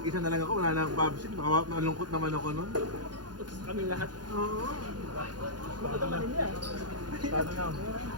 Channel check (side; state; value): left; late; 0.70 ms